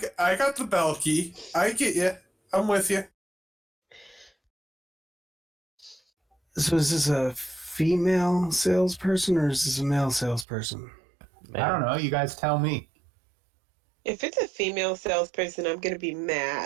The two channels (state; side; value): drops out; left; at 10.5 s